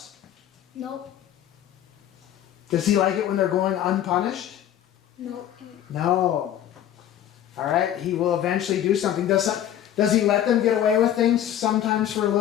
Nope. Does He like it when they're going unpunished? Nope. No. All right, He will eventually do something. Does He let them get away with things sometimes for a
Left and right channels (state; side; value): quieter; right; 11.0 dB